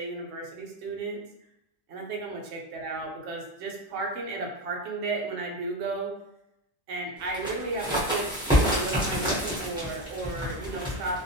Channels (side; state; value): both; normal; correlation 0.19